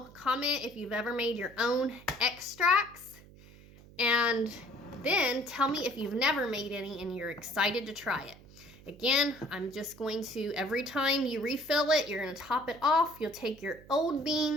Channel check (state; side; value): noise; right; hum, 21 dB below the sound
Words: comment if you've ever made your own extracts, and then tell me if you've never made any and you're excited to try it. Again, I'm just going to, every time you refill it, you're going to top it off. You'll take your old